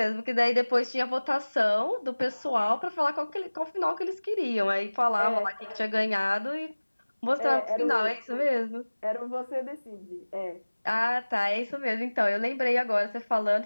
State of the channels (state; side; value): inverted; both; correlation -1.00